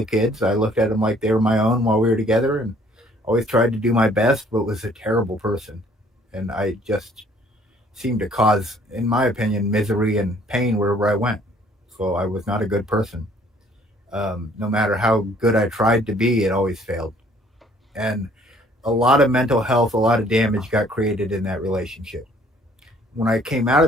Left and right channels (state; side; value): normal; both; correlation 0.59